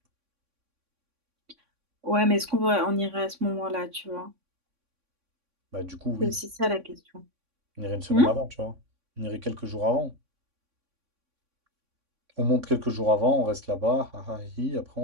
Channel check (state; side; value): late; left; 3.6 ms